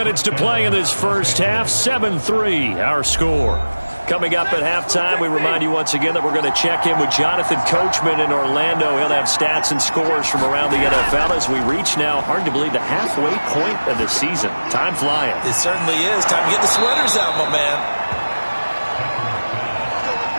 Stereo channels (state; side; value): inverted; both; correlation -1.00